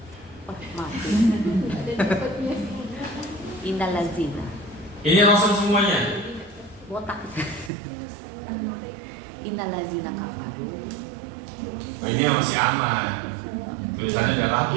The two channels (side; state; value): left; drops out; at 7.7 s